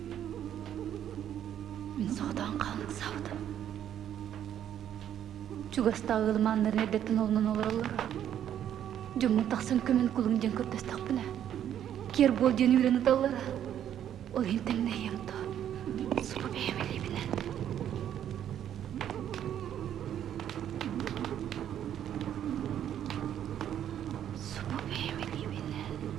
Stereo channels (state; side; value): quieter; left; 10.3 dB